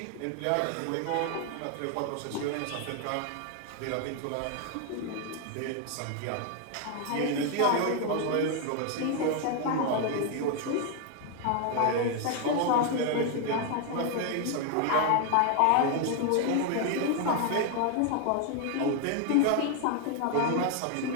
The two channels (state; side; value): different; both; correlation 0.01